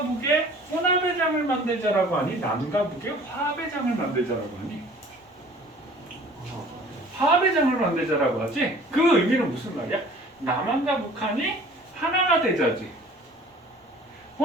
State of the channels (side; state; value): both; normal; correlation 0.49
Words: 북의 혼합의 장을 만들자라고 하니 남과 북의 화합의 장을 만들자라고 하니 화합의 장을 만들자라고 하지. 그 의미는 무슨 말이야? 남한과 북한이 하나가 되자지.